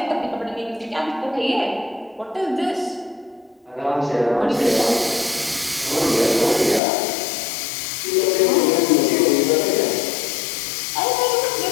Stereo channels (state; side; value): drops out; right; at 6.8 s